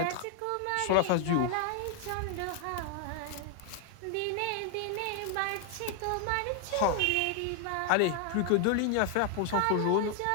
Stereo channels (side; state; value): both; different; correlation 0.00